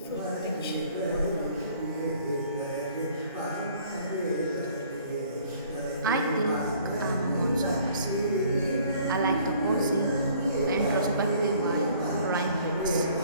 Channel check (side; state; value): both; inverted; correlation -0.56